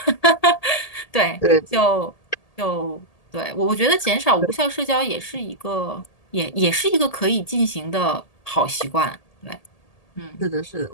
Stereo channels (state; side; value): late; right; 1.8 ms